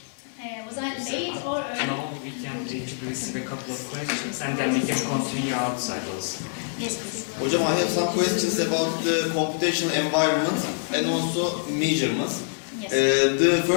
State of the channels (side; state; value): right; silent; 61 dB below the other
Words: Was I late or early? No, we can receive a couple of questions and then we can continue outside also. Yes, please. Hocam, I have some questions about the computational environment and also measurements. Yes. The